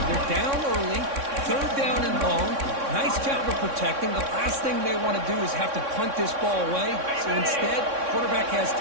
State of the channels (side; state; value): left; late; 3.6 ms